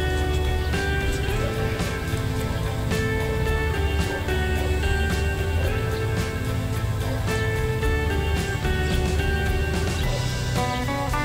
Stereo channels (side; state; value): both; identical; correlation 1.00